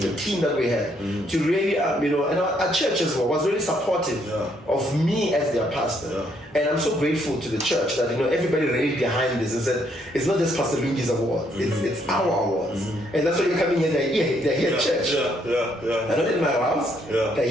the team that we had to really and our church as well was really supportive of me as their pastor. And I'm so grateful to the church that everybody really behind this and said it's not just Pastor Lungi's awards, it's our awards. And that's why you're coming here. They're here at church. They're not in my house. They're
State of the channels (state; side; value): normal; both; correlation 0.71